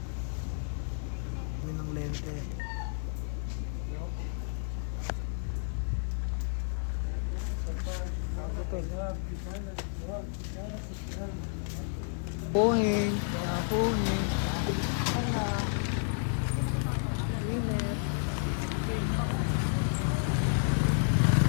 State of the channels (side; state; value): right; silent; digital silence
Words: Kami ng lente. Puhing, puhing. Sana. Ang init.